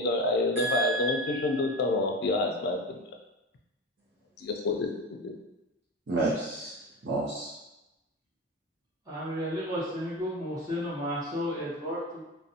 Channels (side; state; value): both; normal; correlation 0.25